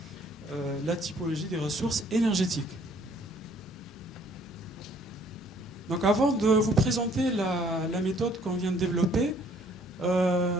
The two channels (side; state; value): both; normal; correlation 0.61